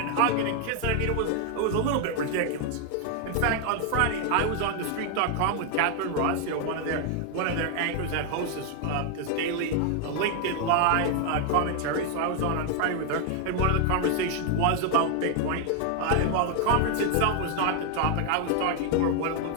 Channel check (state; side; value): different; both; correlation 0.00